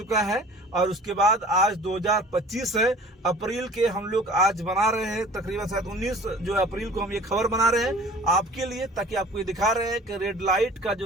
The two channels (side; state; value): both; normal; correlation 0.46